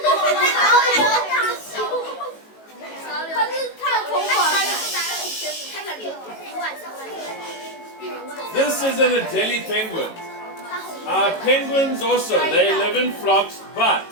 This is an Adelie penguin. Penguins also, they live in flocks, but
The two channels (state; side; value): late; right; 18 ms